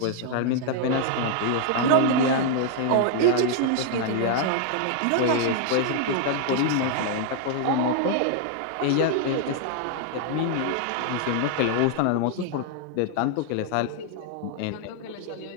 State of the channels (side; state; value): both; different; correlation 0.00